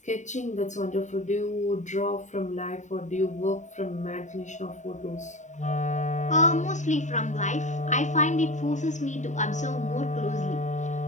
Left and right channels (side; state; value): right; late; 0.35 ms